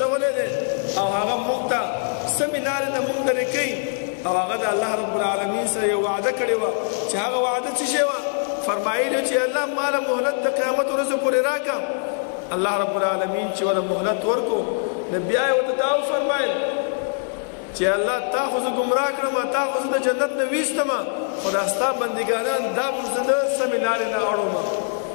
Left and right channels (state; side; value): silent; right; digital silence